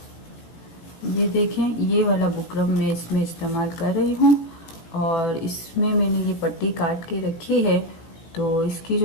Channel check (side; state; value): right; late; 18 ms